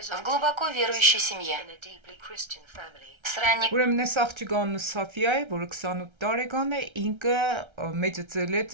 в глубоко верующей семье. С ранних Ուրեմն այս աղջիկանը Սաֆիա է, որը 28 տարեկան է, ինքը մեծացել է,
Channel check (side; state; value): left; late; 1.3 ms